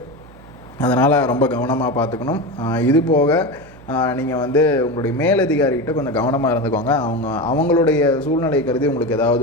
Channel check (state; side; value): noise; right; hum, 22 dB below the sound